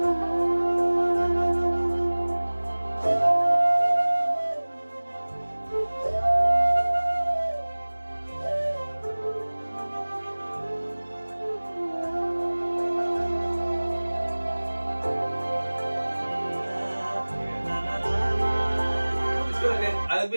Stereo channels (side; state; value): both; inverted; correlation -1.00